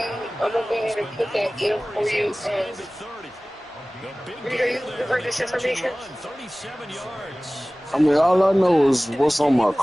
I'm going to go ahead and put that in for you. Rita, you heard this information? 37 yards. I mean, all I know is what's on my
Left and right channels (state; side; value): normal; both; correlation 0.98